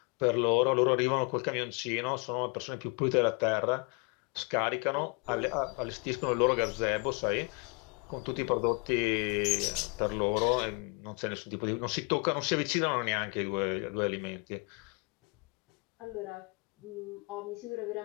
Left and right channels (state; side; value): quieter; right; 31.4 dB